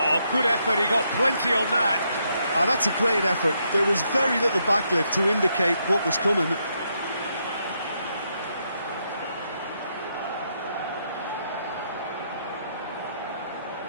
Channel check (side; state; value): both; inverted; correlation -0.78